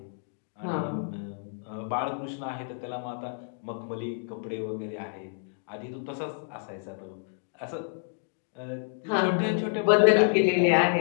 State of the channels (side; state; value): right; silent; digital silence